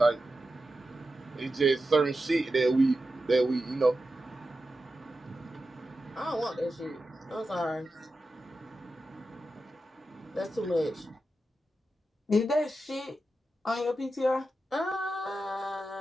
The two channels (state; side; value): normal; both; correlation 0.91